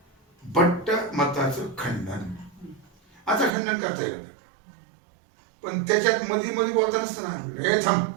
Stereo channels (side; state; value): left; drops out; at 3.6 s